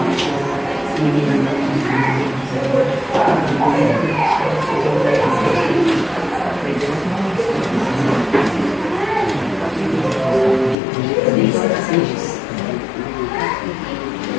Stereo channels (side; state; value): right; drops out; at 10.8 s